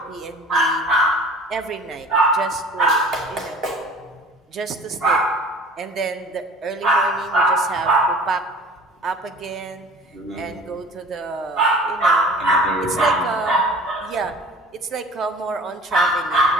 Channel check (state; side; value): normal; both; correlation 0.44